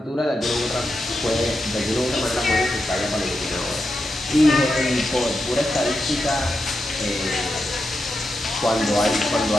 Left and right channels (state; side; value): normal; both; correlation 0.87